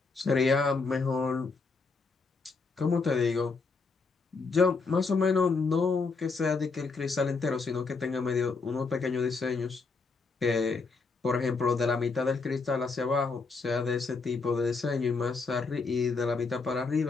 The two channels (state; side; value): quieter; right; 4.4 dB